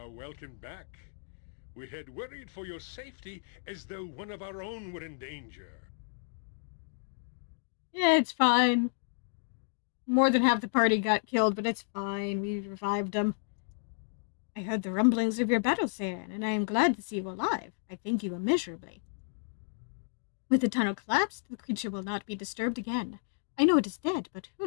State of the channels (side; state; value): right; silent; digital silence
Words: welcome back. We had worried for your safety as though one of our own were in danger. Yeah, it's fine. More than half the party got killed, but it's fine. We revived them. I heard the rumblings of your battle, Saren, and I am glad to see you alive. I thank you immeasurably. With the tunnel collapsed, the creature will not be disturbed again. I know it is dead, but who